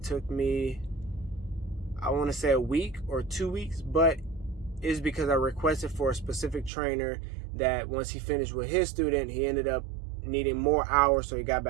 took me, I want to say a week or 2 weeks, but it's because I requested for a specific trainer that once he finished with his student, he ended up needing more hours, so he got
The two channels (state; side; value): drops out; left; at 6.7 s